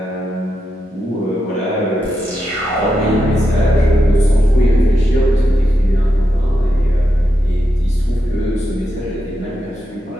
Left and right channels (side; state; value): both; normal; correlation 0.86